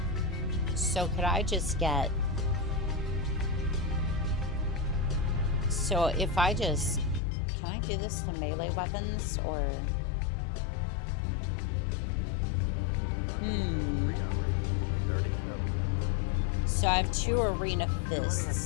So could I just get... So if I just... Can I do this to melee weapons, or... So I have 2 arena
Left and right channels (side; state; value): right; drops out; at 7.2 s